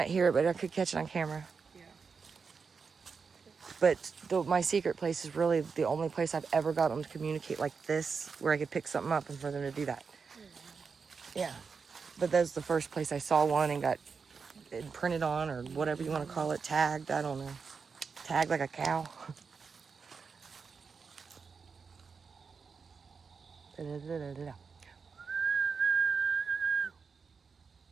hear it, but I could catch it on camera. Yeah. But my secret place is really the only place I've ever got them to communicate like this, where I could pick something up and for them to do that. Yeah. But that's the first place I saw one and got it printed on, or whatever you want to call it, tagged. I don't know. Tagged like a cow.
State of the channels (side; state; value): left; quieter; 5.4 dB